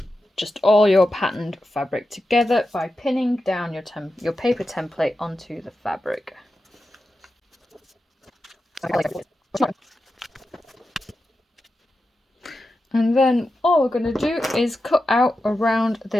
just all your patterned fabric together by pinning down your paper template onto the fabric. And then all we're going to do is cut out around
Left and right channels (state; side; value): normal; both; correlation 0.91